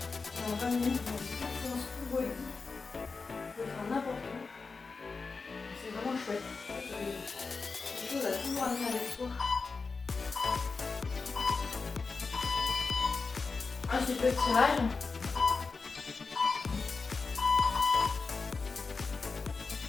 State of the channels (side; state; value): right; quieter; 4.4 dB